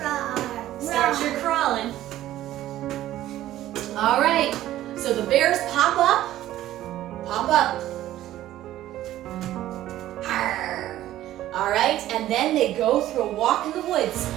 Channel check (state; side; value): quieter; left; 13.8 dB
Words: Start your crawling. All right, so the bears pop up. Pop up. All right, and then they go through a walk in the woods.